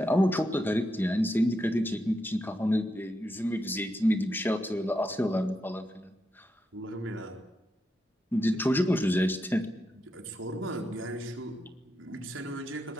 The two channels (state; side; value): normal; both; correlation 0.84